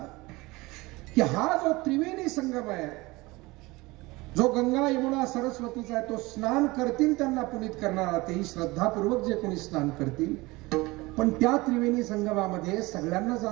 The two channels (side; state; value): left; quieter; 22.1 dB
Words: की हा जो त्रिवेणी संगम आहे, जो गंगा यमुना सरस्वतीचा आहे, तो स्नान करतील त्यांना पुनीत करणारा, तेही श्रद्धापूर्वक जे कोणी स्नान करतील. पण त्या त्रिवेणी संगमामध्ये सगळ्यांना